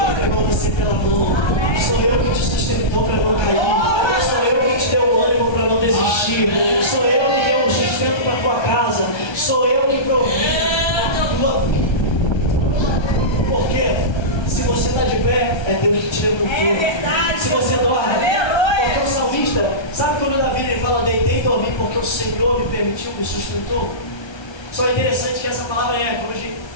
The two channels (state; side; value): late; right; 1.3 ms